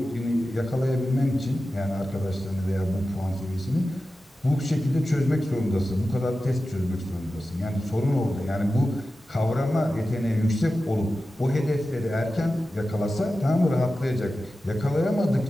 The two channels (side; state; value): both; normal; correlation 0.93